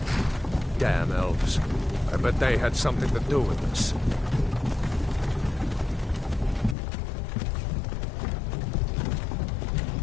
Damn elves. I bet they had something to do with this.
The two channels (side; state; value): right; drops out; at 6.8 s